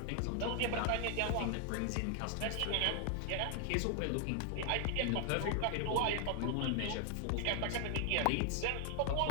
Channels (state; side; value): different; both; correlation 0.00